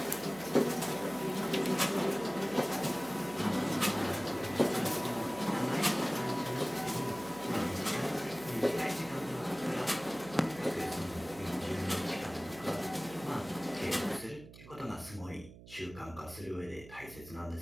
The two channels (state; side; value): noise; right; hum, 18 dB below the sound